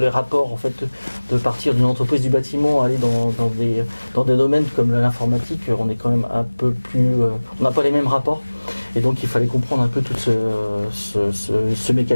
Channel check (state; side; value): inverted; both; correlation -1.00